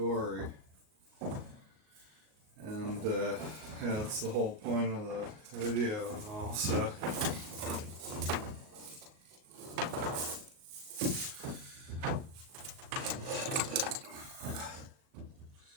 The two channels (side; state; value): left; late; 37 ms